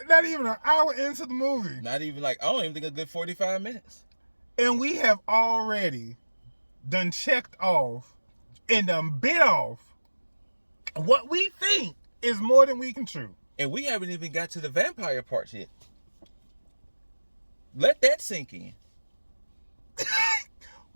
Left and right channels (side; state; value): both; inverted; correlation -1.00